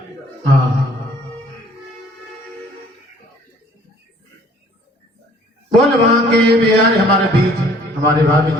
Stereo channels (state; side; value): normal; both; correlation 0.56